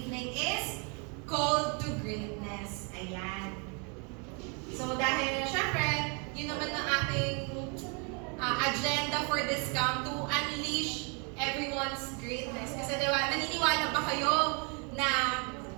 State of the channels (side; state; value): left; quieter; 35.4 dB